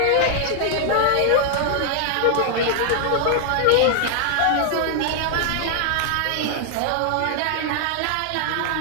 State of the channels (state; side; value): different; both; correlation 0.00